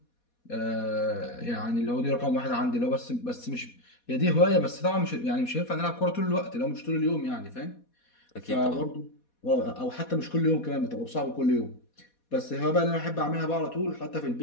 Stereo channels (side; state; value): right; late; 4.2 ms